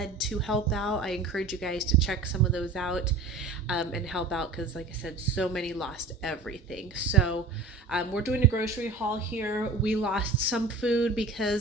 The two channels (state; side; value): quieter; left; 3.6 dB